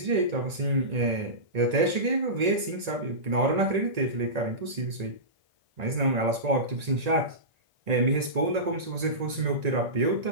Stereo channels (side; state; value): left; late; 1.9 ms